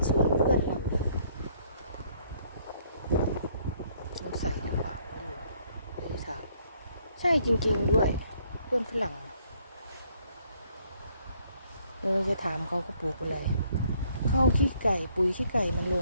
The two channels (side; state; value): both; inverted; correlation -0.66